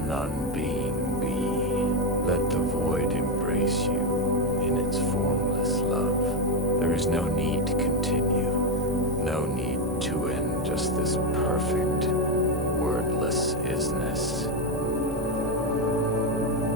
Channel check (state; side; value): normal; both; correlation 0.07